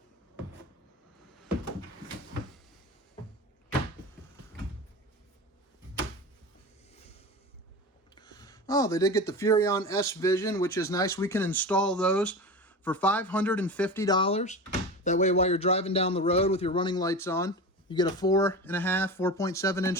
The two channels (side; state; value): both; normal; correlation 0.28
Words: Oh, they did get the Furrion S Vision, which is nice. We can install those for $550. That way, while you're driving down the road with your running lights on, you get a 4.7-inch